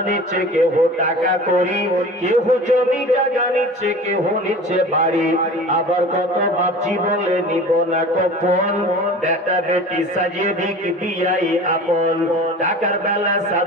নিচ্ছে, কেহ টাকা করি, কেহ জমি জায়গা নিচ্ছে, কেহ নিচ্ছে বাড়ি। আবার কত বাপজি বলে নিব না কখন, বেটা বেটি সাজিয়ে দিক বিয়াই আপন। টাকার বেলা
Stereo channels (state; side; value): normal; both; correlation 0.39